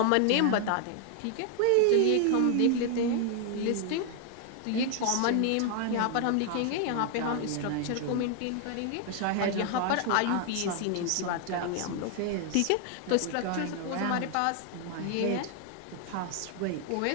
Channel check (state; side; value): different; both; correlation 0.00